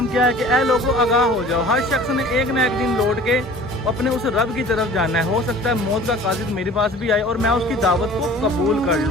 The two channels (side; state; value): both; normal; correlation 0.46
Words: کیا ہے کہ اے لوگوں آگاہ ہو جاؤ, ہر شخص نے ایک نہ ایک دن لوٹ کے اپنے اس رب کی طرف جانا ہے. ہو سکتا ہے موت کا قاصد میرے پاس بھی آئے اور میں اس کی دعوت کو قبول کر